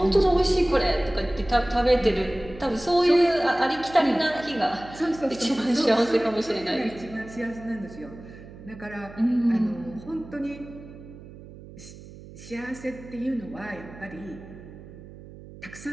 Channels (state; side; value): noise; right; hum, 17 dB below the sound